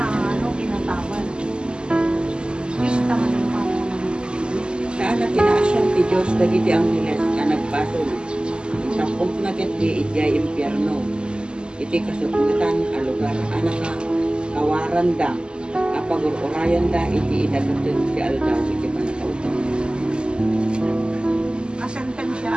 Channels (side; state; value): left; late; 0.049 ms